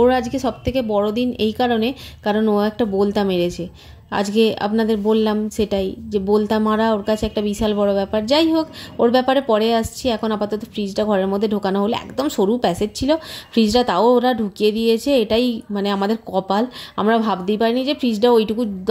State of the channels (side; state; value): both; identical; correlation 1.00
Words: আজকে সবথেকে বড় দিন এই কারণ ও একটা বলতা মেরেছে। আজকে আপনাদের বললাম সেটাই, যে বলতা মারা ওর কাছে একটা বিশাল বড় ব্যাপার। যাই হোক, ওর ব্যাপারে পরে আসছি। এখন আপাতত ফ্রিজটা ঘরের মধ্যে ঢোকানো হলো। একদম সরু প্যাসেজ ছিল ফ্রিজটা, তাও ওরা ঢুকিয়ে দিয়েছে। এটাই মানে আমাদের কপাল। আমরা ভাবতেই পারিনি যে ফ্রিজটা ওইটুকু